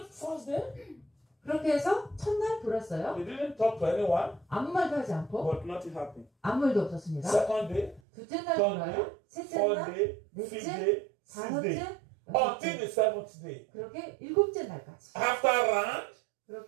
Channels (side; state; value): left; drops out; at 8.0 s